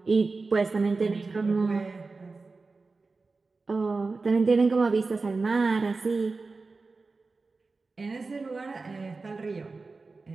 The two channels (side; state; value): left; quieter; 3.9 dB